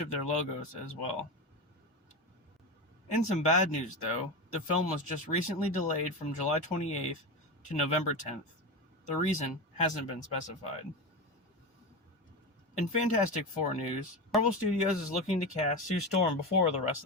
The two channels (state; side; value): normal; both; correlation 0.20